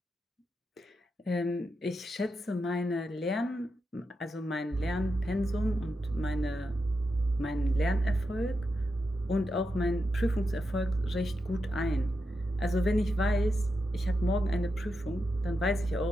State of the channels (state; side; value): normal; both; correlation 0.87